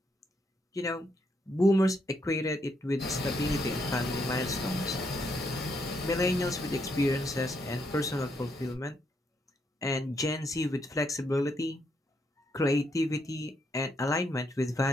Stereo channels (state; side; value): normal; both; correlation 0.76